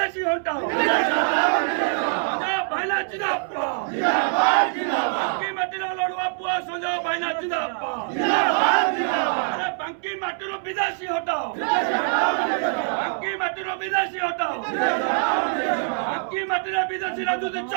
হটাও ভাইনা জিন্দাবাদ বাকি মাটির লড়ুয়া পুয়া সঞ্জয় ভাইনা জিন্দাবাদ বাকি মাটির বিদেশি হটাও বাকি মাটির বিদেশি হটাও বাকি মাটির বিদেশি রাজনীতি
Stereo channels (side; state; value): left; silent; 63 dB below the other